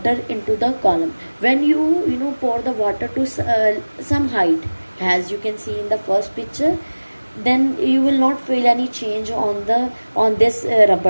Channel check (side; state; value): both; inverted; correlation -1.00